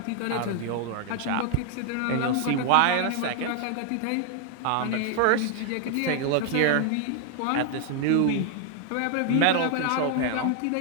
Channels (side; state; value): both; different; correlation 0.00